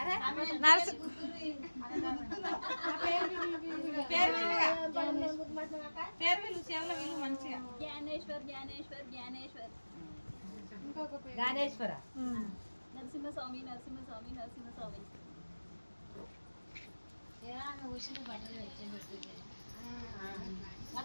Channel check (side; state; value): both; inverted; correlation -1.00